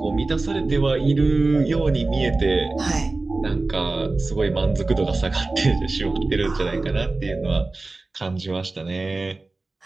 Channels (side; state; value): left; quieter; 3.4 dB